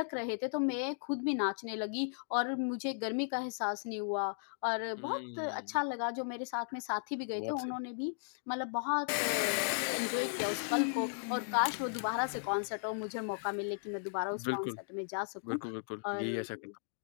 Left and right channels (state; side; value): silent; right; digital silence